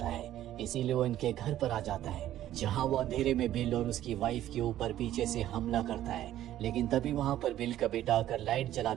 है, इसीलिए वो इनके घर पर आ जाता है, जहाँ वो अंधेरे में बिल और उसकी वाइफ के ऊपर पीछे से हमला करता है। लेकिन तभी वहाँ पर बिल का बेटा आकर लाइट जला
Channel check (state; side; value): quieter; left; 12.8 dB